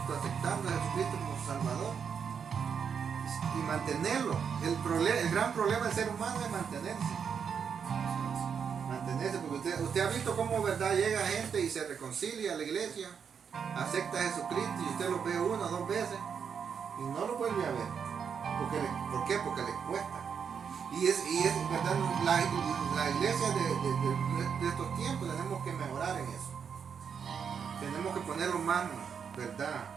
aceptando a Jesucristo como su Salvador y mantenerlo. El gran problema del ser humano es mantenerse, porque usted ha visto cómo, ¿verdad?, llega gente y se reconcilia a la iglesia, acepta a Jesucristo y usted lo ve 1 o 2 veces y no lo vuelve a ver. ¿Por qué? Porque les cuesta. Y es verdad, la iglesia de estos tiempos tenemos que mejorar en eso. Tenemos que ponerlo más, ¿verdad?,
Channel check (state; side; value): quieter; left; 6.9 dB